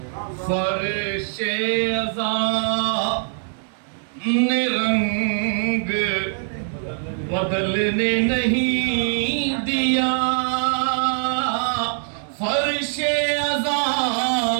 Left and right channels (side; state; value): left; silent; digital silence